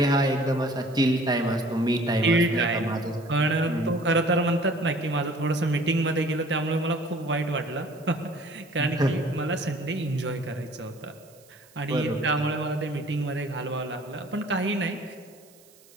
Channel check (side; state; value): right; noise; hiss, 27 dB below the sound